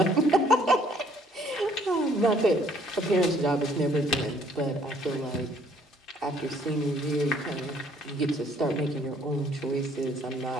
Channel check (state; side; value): normal; both; correlation 0.62